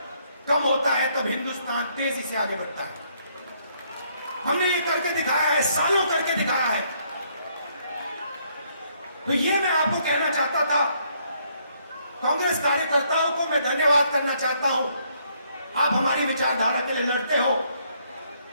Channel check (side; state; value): both; inverted; correlation -0.69